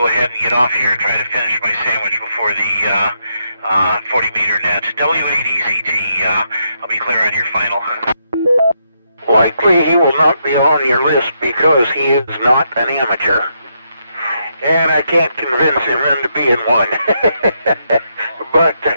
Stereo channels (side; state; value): both; inverted; correlation -0.79